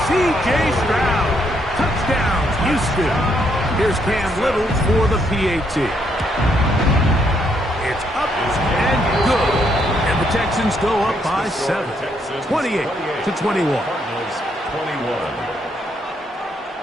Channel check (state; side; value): normal; both; correlation 0.74